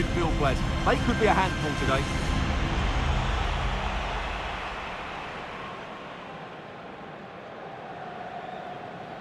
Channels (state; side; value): identical; both; correlation 1.00